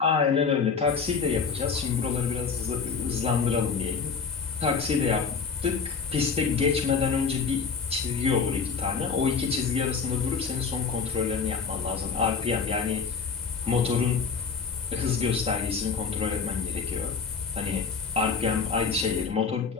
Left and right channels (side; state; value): right; quieter; 5.6 dB